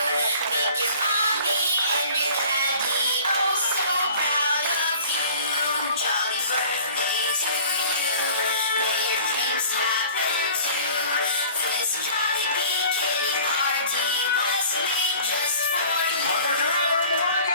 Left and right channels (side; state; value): both; inverted; correlation -0.48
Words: Make your mommy and your daddy oh so proud of you. Jolly birthday to you, may your dreams happen too. This jolly bikini party was made just for you.